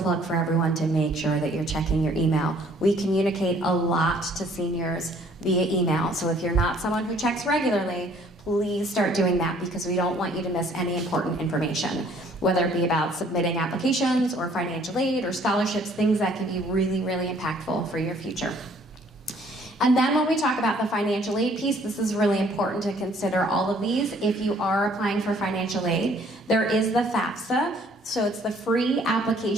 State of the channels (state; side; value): normal; both; correlation 0.59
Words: for everyone to make sure that you're checking your email. We communicate a lot to seniors via email, so if you're not someone who checks regularly, please start doing that because we don't want you to miss any important information, whether it be about submitting applications or financial aid or scholarships, things that can be really, really impactful for your future. And then when we talk about the financial aid piece, this is really important to consider all of these. If you are applying for financial aid, there is the FAFSA. So it's the free